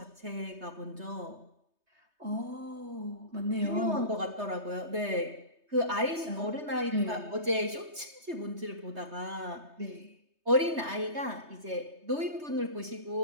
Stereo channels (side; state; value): left; late; 3.2 ms